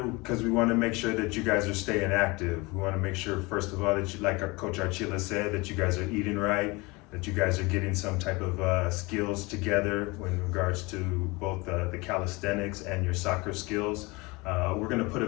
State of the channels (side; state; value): right; quieter; 24.9 dB